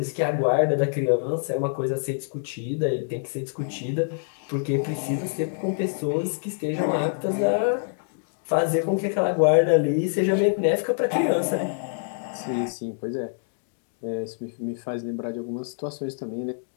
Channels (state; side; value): silent; right; digital silence